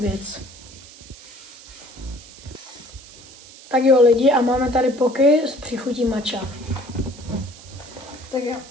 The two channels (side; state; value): right; noise; hiss, 19 dB below the sound